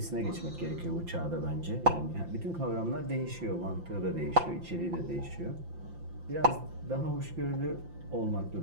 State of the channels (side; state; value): left; late; 5.8 ms